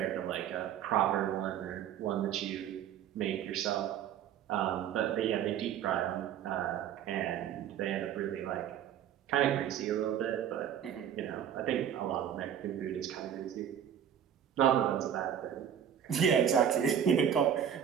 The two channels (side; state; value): left; quieter; 9.4 dB